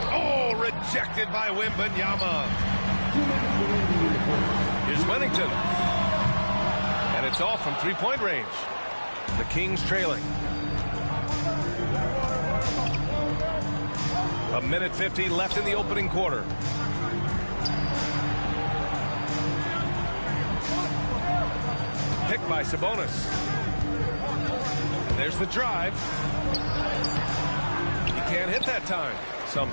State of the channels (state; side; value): inverted; both; correlation -1.00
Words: Oh, rejected by Wembanyama. Here's Wennington. And it's off from three-point range. The Kings trailing. 1:50 left in the opening quarter. Picked by Sabonis. And there's the drive. He can't hit that time. Some